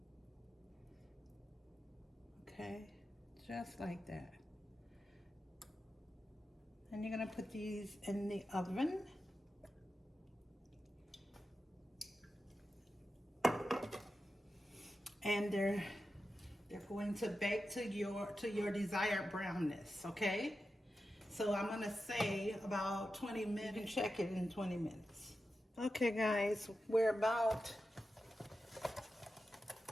Okay, just like that. And you're gonna put these in the oven. And they're going to bake to your desired brownness, okay? So I'm gonna say about 20 minutes, and check it in 20 minutes. Okay guys, we're about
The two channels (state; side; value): normal; both; correlation 0.91